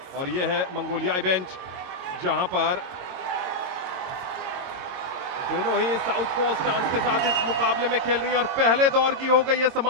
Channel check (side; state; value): left; late; 22 ms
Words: और ये है मंगोलियाई बेंच, जहां पर दोनों ही साउथ पो स्टांस के साथ इस मुकाबले में खेल रही हैं और पहले दौर की हो गई है